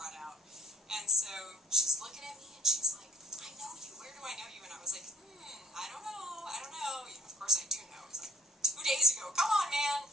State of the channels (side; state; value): both; normal; correlation 0.58